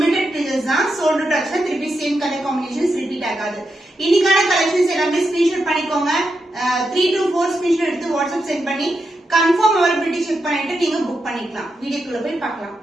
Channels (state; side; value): normal; both; correlation 0.86